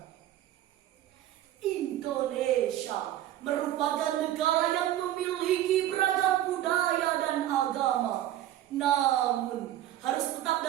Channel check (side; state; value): left; quieter; 12.9 dB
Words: Indonesia merupakan negara yang memiliki beragam budaya dan agama, namun harus tetap